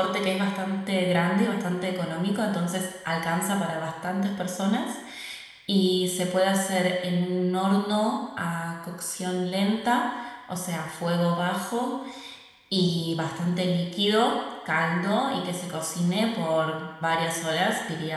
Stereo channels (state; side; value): identical; both; correlation 1.00